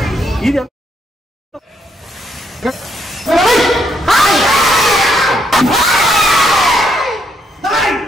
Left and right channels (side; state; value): both; normal; correlation 0.74